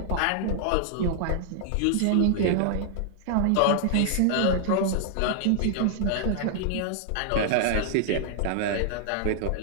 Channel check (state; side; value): different; both; correlation -0.01